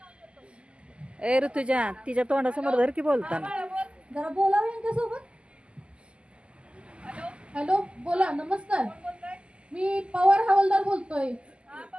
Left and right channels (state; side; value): late; left; 0.053 ms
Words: देतो। ए ऋतुजा, तिच्या तोंडासमोर धर की बोलताना। जरा बोलावं यांच्यासोबत। हॅलो, बोला। नमस्कार, मी पवार हवालदार बोलतोय।